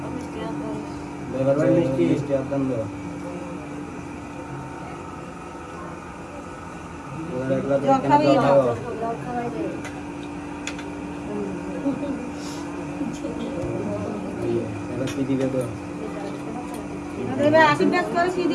মিষ্টি মিষ্টি আদান দাও কি দিবে তো দেবে আশীর্বাদ করে কি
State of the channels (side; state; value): both; identical; correlation 1.00